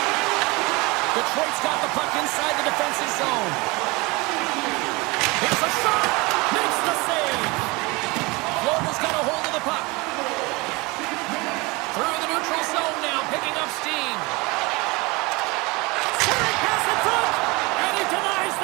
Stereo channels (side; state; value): left; quieter; 24.9 dB